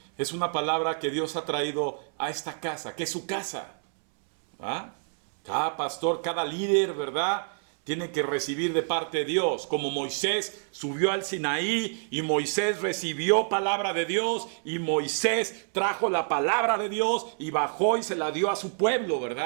es una palabra que Dios ha traído a esta casa, que es su casa. ¿Ah? Cada pastor, cada líder, ¿verdad?, tiene que recibir de parte de Dios. Como Moisés subió al Sinaí y Moisés recibió palabra de Dios y Moisés trajo la palabra de Dios y bajó y se la dio a su pueblo,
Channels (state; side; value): silent; left; 60 dB below the other